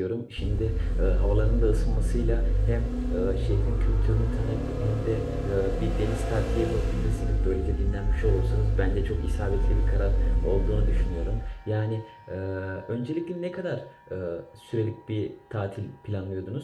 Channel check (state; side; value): identical; both; correlation 1.00